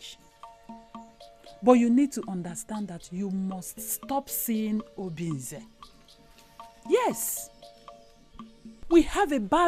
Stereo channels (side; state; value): both; identical; correlation 1.00